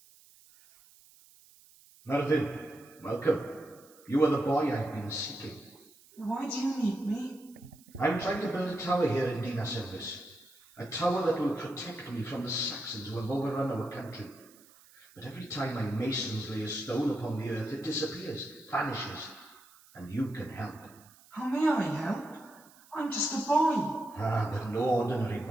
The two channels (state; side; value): noise; right; hiss, 25 dB below the sound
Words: Merlin, welcome. You are the boy I've been seeking. Why do you need me? I'm trying to build a tower here in Dinas Elvis. A tower that will protect me from the Saxons who have overrun our country. But every time my masons lay a stone upon the earth, it disappears, vanishes, and you can help. How may I help? I'm just a boy. Ah, but no ordinary